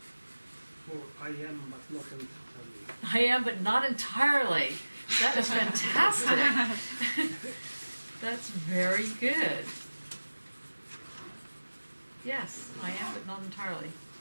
Or I am but not entirely. I am but not entirely. That is fantastic. That's very good. Yes, I am but not entirely.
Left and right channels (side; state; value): both; inverted; correlation -1.00